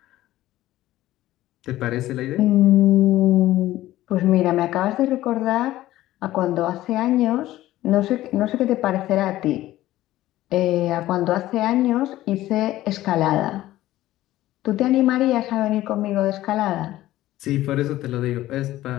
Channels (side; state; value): right; quieter; 15.3 dB